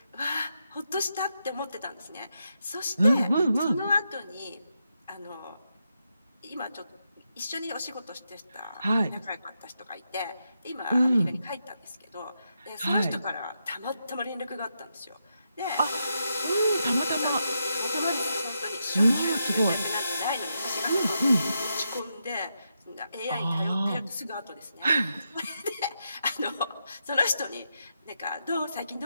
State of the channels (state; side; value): inverted; both; correlation -0.84